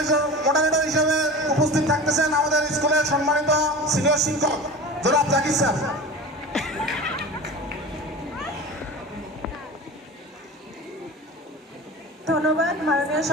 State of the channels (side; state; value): both; normal; correlation 0.33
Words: মডারেটর হিসেবে উপস্থিত থাকতেছেন আমাদের স্কুলের সম্মানিত সিনিয়র শিক্ষক জনাব জাকির স্যার। ধন্যবাদ মাননীয়